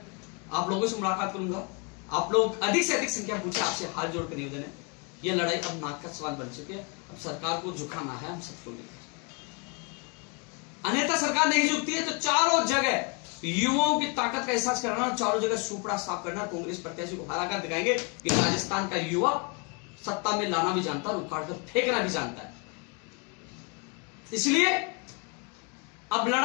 आप लोगों से मुलाकात करूंगा। आप लोग अधिक से अधिक संख्या पूछे, आपसे हाथ जोड़कर निवेदन है, यह लड़ाई अब नाक का सवाल बन चुकी है। अब सरकार को झुकाना है हम सबको लेकर, अन्यथा सरकार नहीं झुकती है तो चारों जगह युवाओं की ताकत का एहसास कराना, चारों जगह सुपड़ा साफ करना, कांग्रेस प्रत्याशी को हराकर दिखाएंगे कि राजस्थान का युवा सत्ता में लाना भी जानता है और उखाड़ कर फेंकना भी जानता है। इसलिए अब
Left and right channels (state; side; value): quieter; right; 33.1 dB